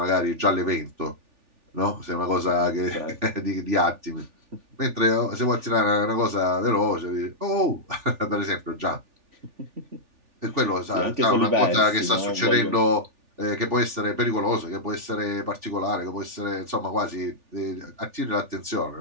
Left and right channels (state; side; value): late; left; 3.4 ms